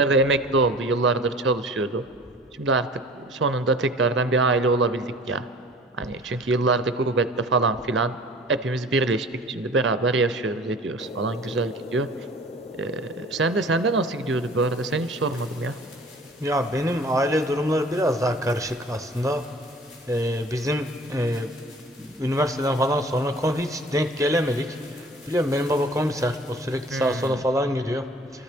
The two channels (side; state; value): both; normal; correlation 0.46